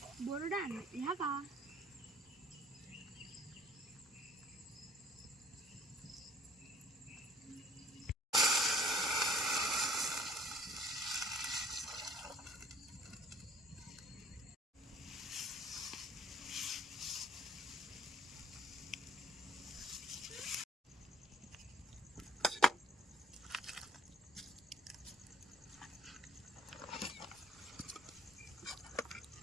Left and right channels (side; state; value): both; normal; correlation 0.55